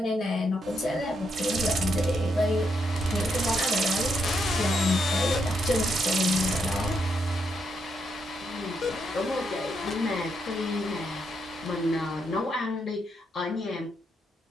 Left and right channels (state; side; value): normal; both; correlation 0.79